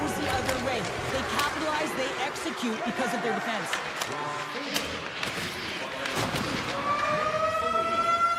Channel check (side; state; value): both; identical; correlation 1.00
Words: the other way. They capitalize, they execute because of their defense.